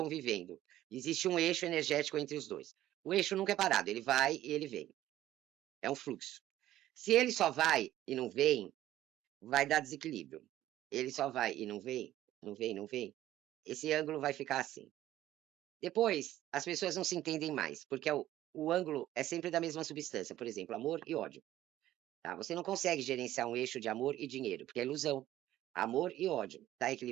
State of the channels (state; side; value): quieter; left; 13.7 dB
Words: existe um eixo energético entre os dois. O eixo nunca é parado, ele vai e ele vem. É um fluxo. Se ele só vai e não vem, vai dar desequilíbrio. Ele só vai e não vem, não vem, não vem. Esse ângulo vai ficar assim. Depois, as pessoas não se entendem mais, porque o ângulo é sempre da mesma substância, por exemplo, amor e ódio. Tá? Você não consegue gerenciar um eixo de amor e dinheiro, porque é ilusão. Amor e ódio. Tá